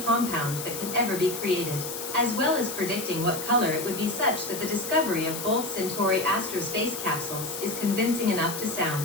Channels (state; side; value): noise; left; hiss, 7 dB below the sound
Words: that can ever be created, as well as predicting what color it would be, such that the discovery of both Centauri Astrospace Capsules is convincing enough to